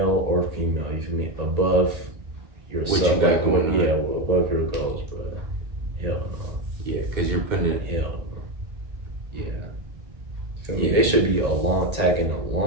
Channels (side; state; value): left; late; 1.8 ms